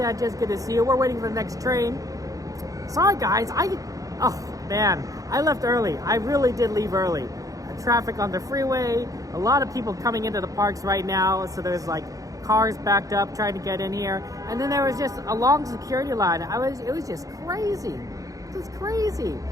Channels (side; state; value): left; late; 0.17 ms